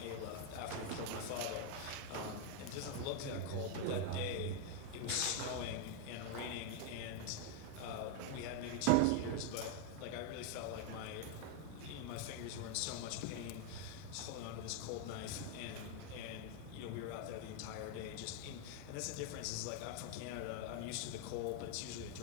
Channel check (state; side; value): different; both; correlation 0.01